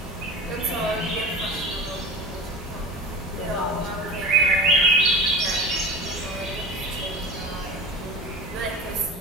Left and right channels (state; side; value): normal; both; correlation 0.32